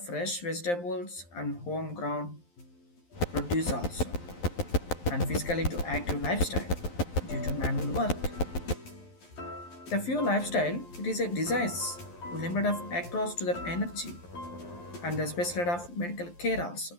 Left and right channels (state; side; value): late; right; 11 ms